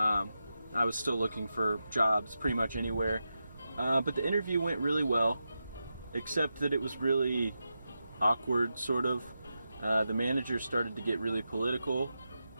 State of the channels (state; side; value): inverted; both; correlation -0.89